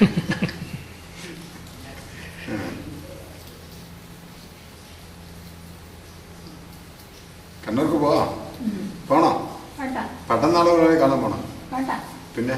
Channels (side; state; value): both; identical; correlation 1.00